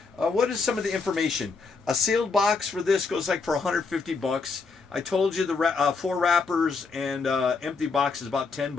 What is some of the information? A sealed box for this goes like for $150. I told you the 4 wrappers and empty box is about $10.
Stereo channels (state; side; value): quieter; right; 4.5 dB